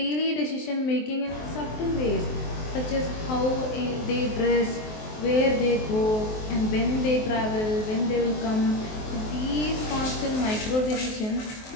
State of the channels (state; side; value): late; right; 23 ms